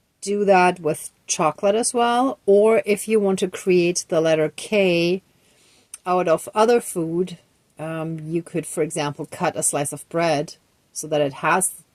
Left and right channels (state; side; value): identical; both; correlation 1.00